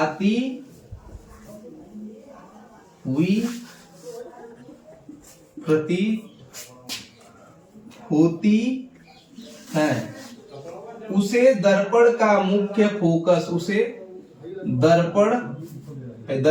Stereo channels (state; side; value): identical; both; correlation 1.00